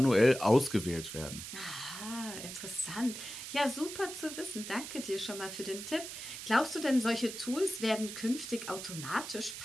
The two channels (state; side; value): noise; right; hiss, 9 dB below the sound